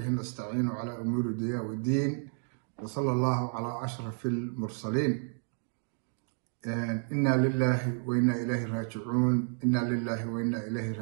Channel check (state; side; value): silent; left; 57 dB below the other